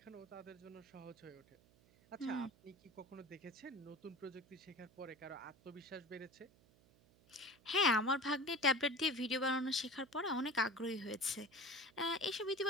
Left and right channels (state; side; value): noise; right; hum, 28 dB below the sound